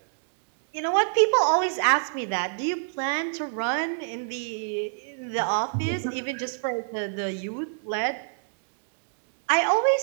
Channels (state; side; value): silent; left; digital silence